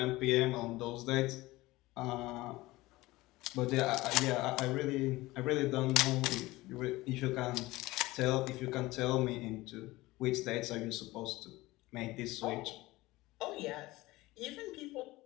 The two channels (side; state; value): right; quieter; 19.5 dB